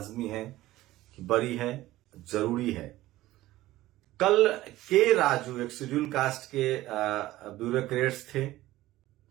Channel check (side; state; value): left; quieter; 16.4 dB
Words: है कि बड़ी है, जरूरी है। कल के राजू एक शेड्यूल कास्ट के ब्यूरोक्रेट्स थे,